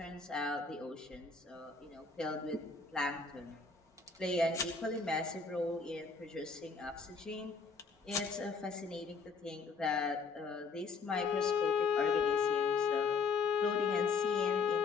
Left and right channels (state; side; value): quieter; right; 4.8 dB